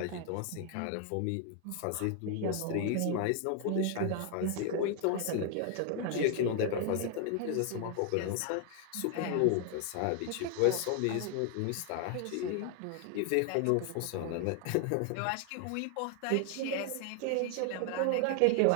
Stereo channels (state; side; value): different; both; correlation 0.00